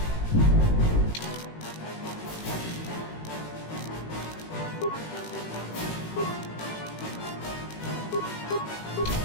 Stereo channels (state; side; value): late; right; 18 ms